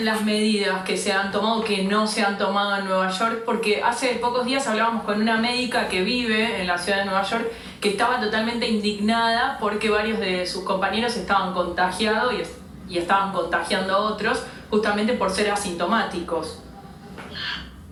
medidas que se han tomado, que no se han tomado en Nueva York? Porque hace pocos días hablábamos con una médica que vive en la ciudad de Nueva York que estaba totalmente indignada porque varios de sus compañeros estaban contagiados y estaban contagiando a otros justamente por ser asintomáticos.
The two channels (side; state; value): both; identical; correlation 1.00